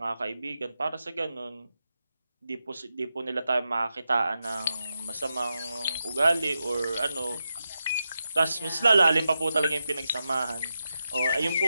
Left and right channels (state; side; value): inverted; both; correlation -0.88